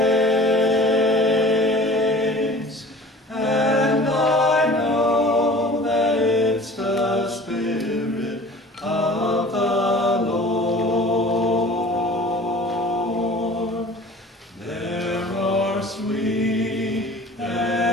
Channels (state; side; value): normal; both; correlation 0.44